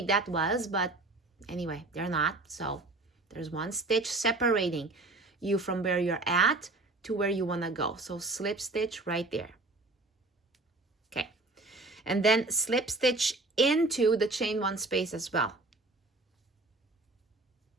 that was, but anyway, they're not. So there's one stitch separating you from where you're at to where you want to go. So slip stitch right there. Okay. And then slip stitch into the chain one space as well.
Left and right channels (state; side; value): quieter; left; 3.0 dB